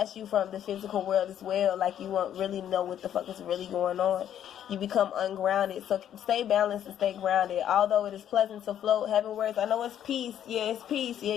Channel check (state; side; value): quieter; right; 10.3 dB